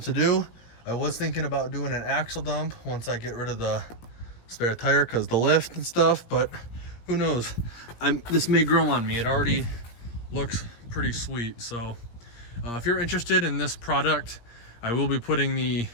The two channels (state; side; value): late; right; 17 ms